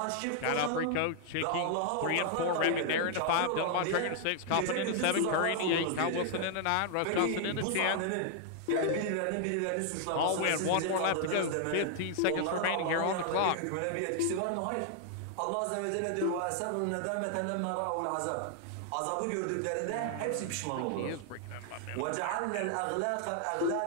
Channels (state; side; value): different; both; correlation 0.00